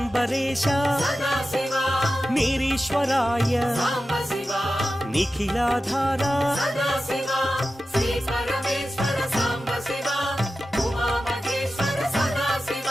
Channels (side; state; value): both; normal; correlation 0.93